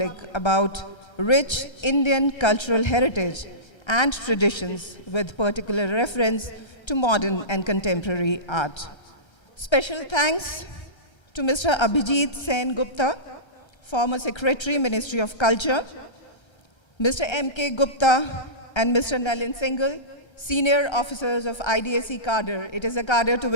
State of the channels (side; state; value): right; late; 1.3 ms